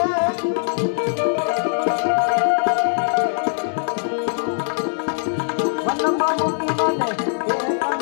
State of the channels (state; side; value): silent; right; digital silence